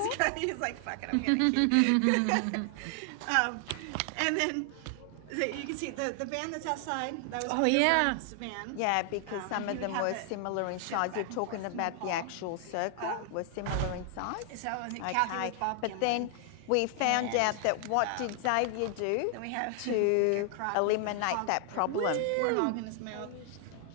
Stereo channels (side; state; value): both; different; correlation 0.00